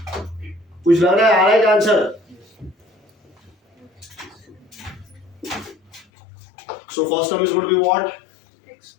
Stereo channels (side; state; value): right; drops out; at 6.1 s